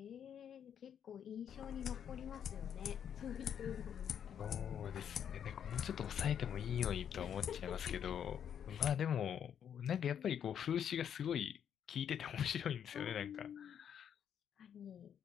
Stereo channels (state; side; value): quieter; right; 8.7 dB